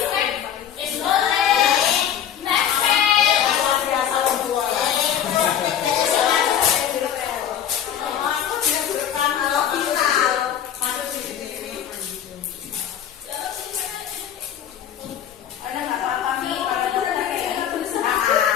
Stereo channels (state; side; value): quieter; right; 9.5 dB